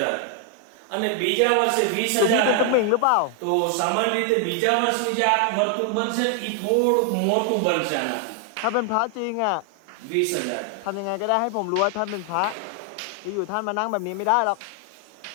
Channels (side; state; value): both; different; correlation 0.00